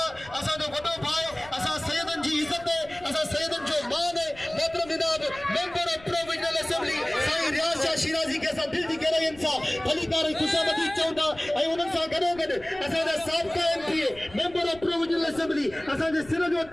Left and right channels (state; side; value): noise; left; rumble, 21 dB below the sound